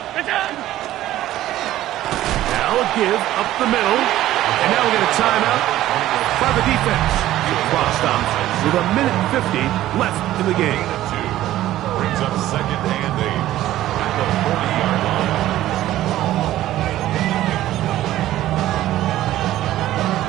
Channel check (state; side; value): quieter; left; 14.2 dB